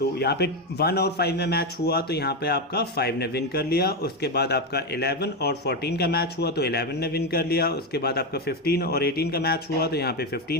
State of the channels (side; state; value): both; normal; correlation 0.10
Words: यहाँ पे 1 और 5 में मैच हुआ तो यहाँ पे आपका 5 ने विन कर लिया। उसके बाद आपका 11 और 14 का मैच हुआ तो 11 ने विन कर लिया। उसके बाद आपका 15 और 18 का मैच हुआ तो यहाँ पे 15